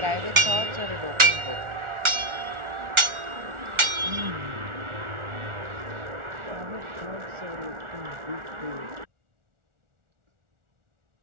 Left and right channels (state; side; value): late; left; 1.4 ms